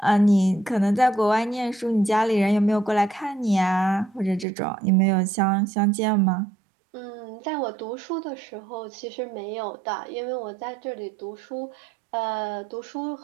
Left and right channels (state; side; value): drops out; left; at 4.5 s